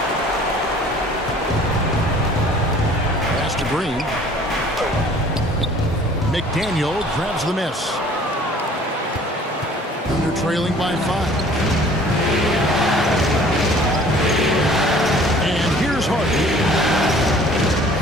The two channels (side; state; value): both; normal; correlation 0.52